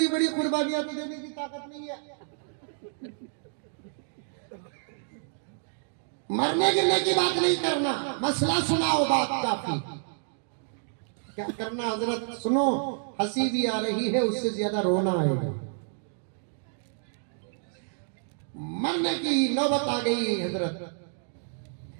बड़ी कुर्बानियां तो देने की ताकत नहीं है। मरने गिरने की बात नहीं करना, मसला सुनाओ, बात काफी। क्या करना हजरत, सुनो, हंसी भी आ रही है, उससे ज्यादा रोना आएगा। मरने की नौबत आ गई हजरत।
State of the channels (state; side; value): silent; left; digital silence